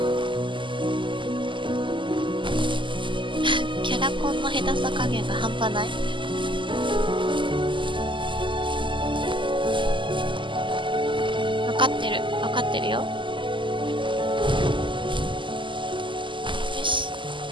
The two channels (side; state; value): left; late; 0.24 ms